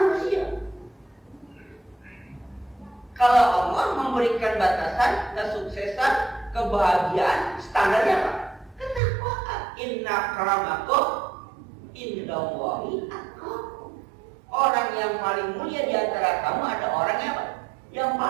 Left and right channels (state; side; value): drops out; left; at 9.0 s